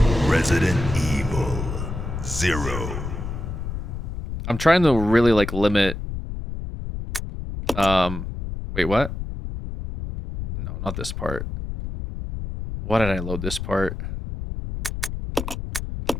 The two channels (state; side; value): noise; left; rumble, 6 dB below the sound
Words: Resident Evil 0. I'm trying to really, like, limit... Wait, what? No, not this part. Why did I load this part?